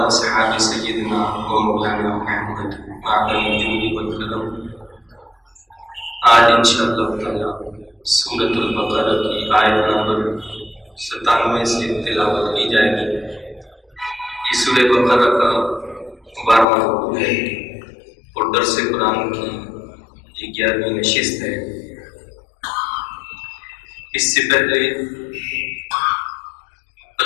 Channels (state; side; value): drops out; right; at 16.7 s